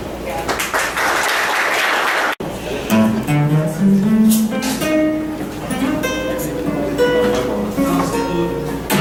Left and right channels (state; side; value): identical; both; correlation 1.00